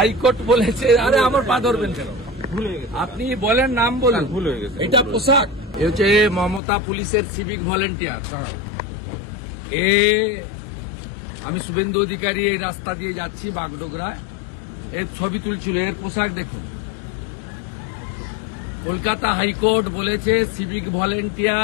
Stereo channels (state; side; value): drops out; right; at 6.6 s